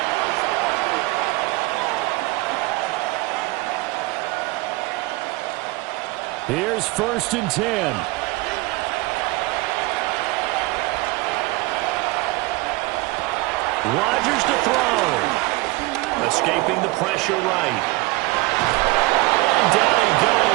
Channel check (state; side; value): quieter; left; 22.0 dB